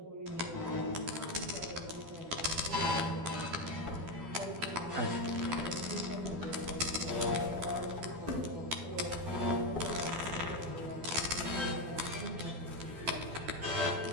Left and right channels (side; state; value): left; late; 12 ms